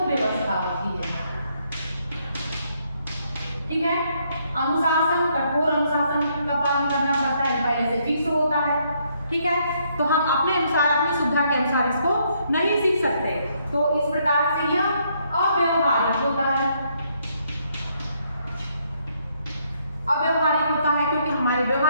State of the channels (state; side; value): inverted; both; correlation -0.72